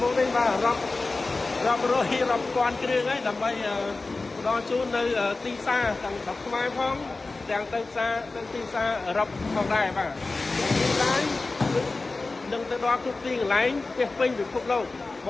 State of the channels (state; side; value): quieter; right; 3.5 dB